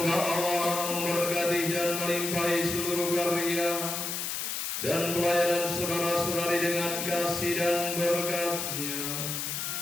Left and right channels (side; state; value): left; noise; hiss, 3 dB below the sound